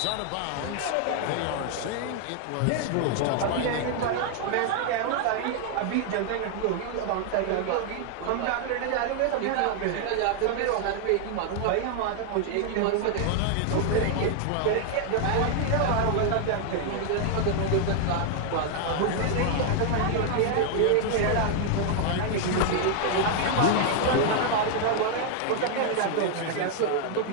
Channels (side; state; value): both; different; correlation 0.00